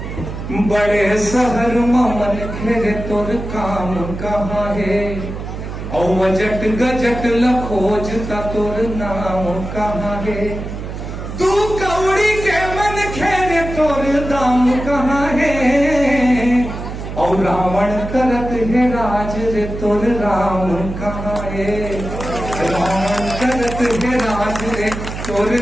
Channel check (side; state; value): right; noise; hum, 8 dB below the sound